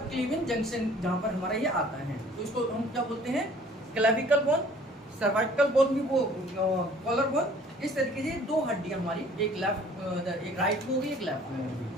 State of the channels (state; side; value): normal; both; correlation 0.53